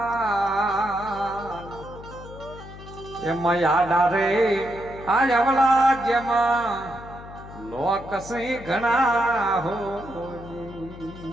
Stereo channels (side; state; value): left; noise; hum, 15 dB below the sound